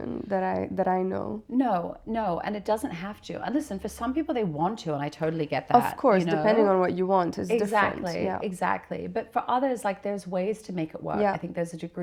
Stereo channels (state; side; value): identical; both; correlation 1.00